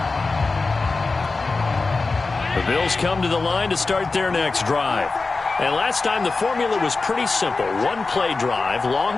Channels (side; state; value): right; quieter; 3.8 dB